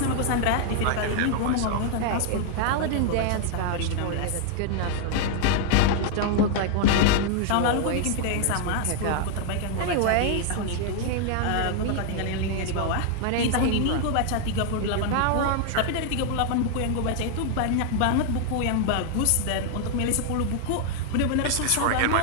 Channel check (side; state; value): both; different; correlation 0.00